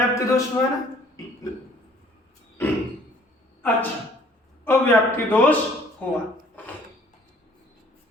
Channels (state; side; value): normal; both; correlation 0.56